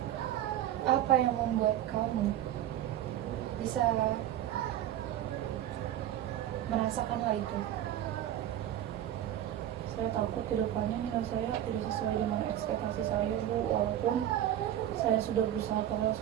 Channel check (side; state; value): left; quieter; 11.8 dB